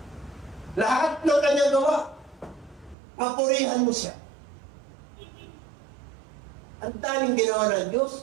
Lahat ng kanyang gawa, papurihan mo siya. Ang daming ginawa ng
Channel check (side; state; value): left; drops out; at 3.0 s